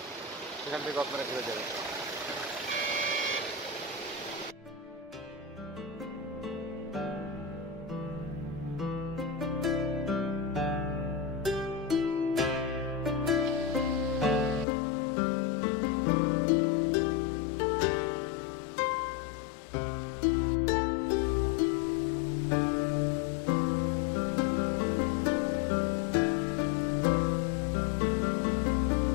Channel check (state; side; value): drops out; right; at 14.7 s